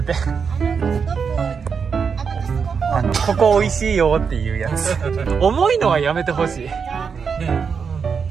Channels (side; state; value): left; quieter; 6.1 dB